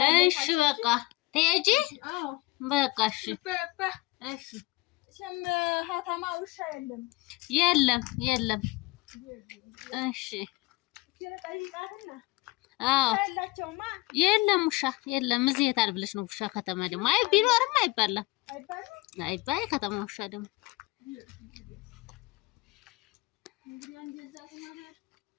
እሺ በቃ ትሄጂ በቃ እሺ ሸም ሀተማ ውሻ የለም እሺ የለም ውሻ የለም እዚህ የት አልብለሽ ነው ውሻ ከተማ ደግሞ አይ ቢኖርም አይባልም አይባይ ከተማ ውሻ ደግሞ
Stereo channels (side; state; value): right; quieter; 20.7 dB